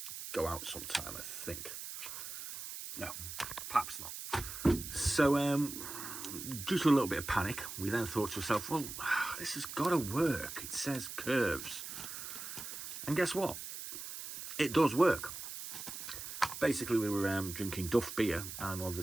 go out sometime, I think. No, perhaps not. So, due to a little bit of panic, we then thought to ourselves, well, this has got to work. It says curves. And guess what? It does work. Basically, we were drinking Duff beer, and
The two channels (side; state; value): right; noise; hiss, 8 dB below the sound